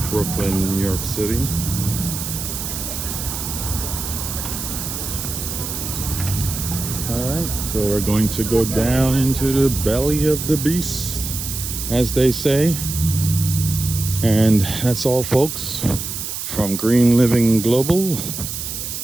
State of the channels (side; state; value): right; noise; hiss, 6 dB below the sound